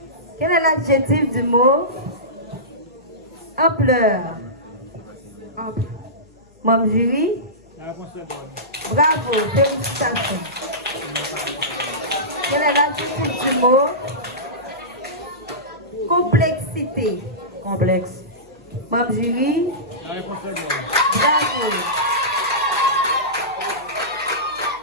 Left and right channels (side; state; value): left; noise; hum, 30 dB below the sound